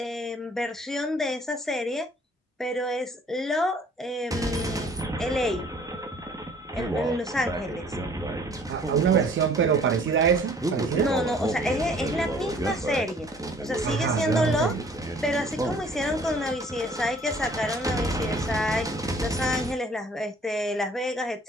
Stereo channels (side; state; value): both; normal; correlation 0.55